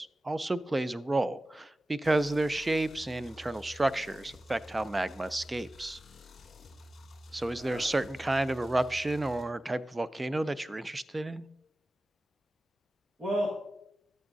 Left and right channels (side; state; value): both; normal; correlation 0.96